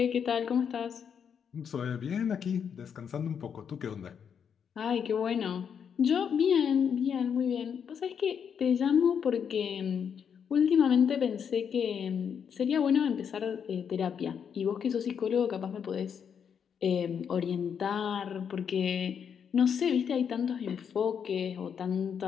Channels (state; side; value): quieter; right; 7.4 dB